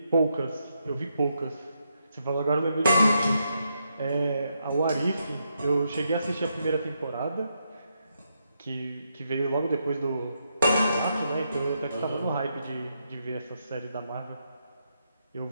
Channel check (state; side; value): inverted; both; correlation -0.81